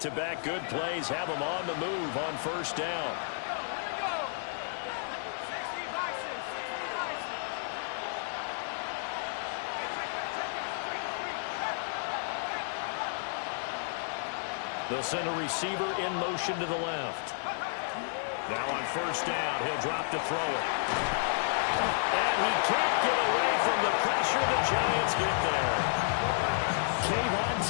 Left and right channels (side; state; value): right; silent; digital silence